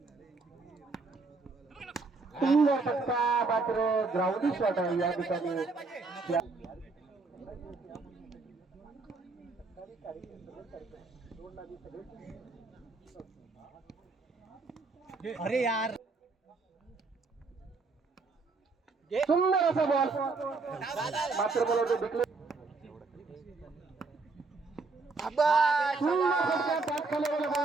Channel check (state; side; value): quieter; left; 3.9 dB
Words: सुंदर फटका मात्र ग्राउंडी शॉट आहे या ठिकाणी. अरे यार सुंदर असा बॉल मात्र मला तो विकले